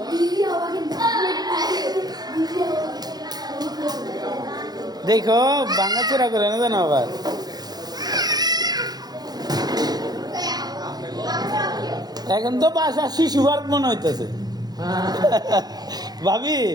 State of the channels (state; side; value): late; left; 0.19 ms